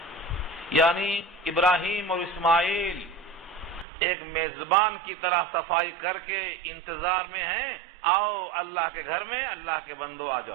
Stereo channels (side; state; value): left; drops out; at 3.9 s